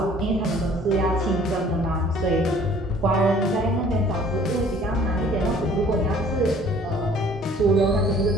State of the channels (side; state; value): both; normal; correlation 0.54